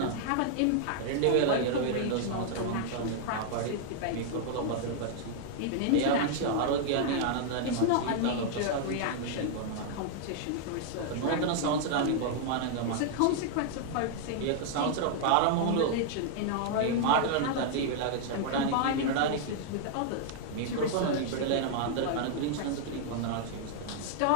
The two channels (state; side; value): different; both; correlation -0.01